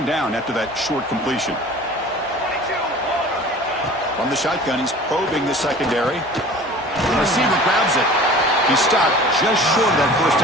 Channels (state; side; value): normal; both; correlation 0.43